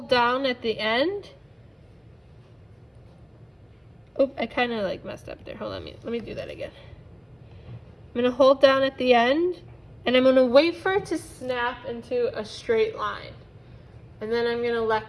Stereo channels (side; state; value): both; identical; correlation 1.00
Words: down at the end. Oop, I kind of like messed up there. Hold on, let me do that again. I'm gonna hold down at the end, and I'm gonna wait for it to snap into a straight line. And then I'm gonna